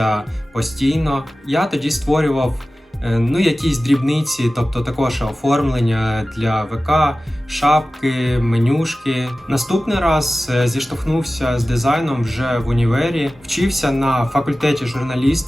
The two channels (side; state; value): both; normal; correlation 0.96